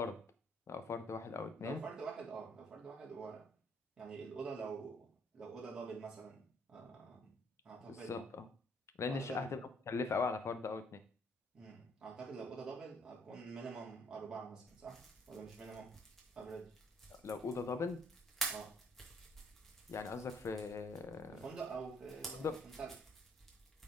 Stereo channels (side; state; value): both; normal; correlation 0.64